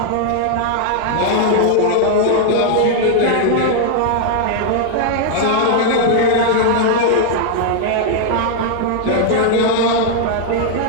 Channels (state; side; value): different; both; correlation 0.00